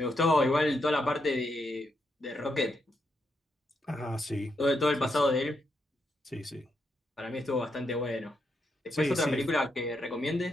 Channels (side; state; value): both; normal; correlation 0.81